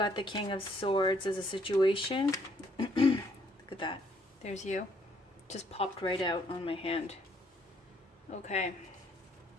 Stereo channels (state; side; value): normal; both; correlation 0.67